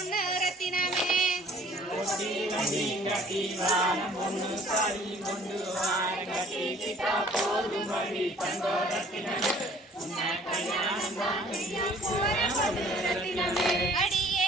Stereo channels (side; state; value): both; normal; correlation 0.53